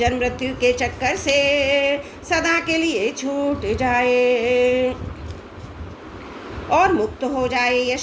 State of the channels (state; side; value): identical; both; correlation 1.00